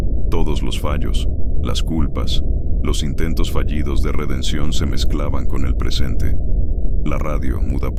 Todos los fallos, las culpas, los intentos fallidos de redención se mezclaban con el presente. La radio, muda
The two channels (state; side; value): identical; both; correlation 1.00